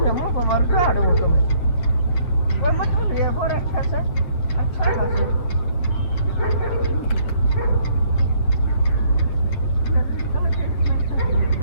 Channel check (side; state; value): right; late; 8.4 ms